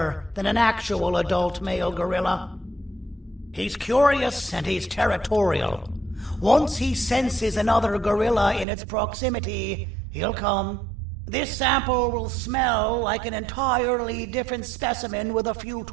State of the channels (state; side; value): drops out; left; at 8.7 s